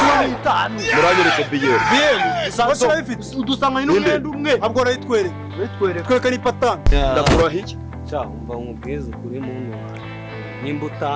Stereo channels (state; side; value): identical; both; correlation 1.00